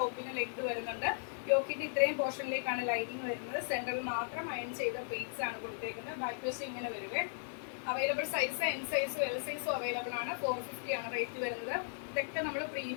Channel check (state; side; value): silent; right; 53 dB below the other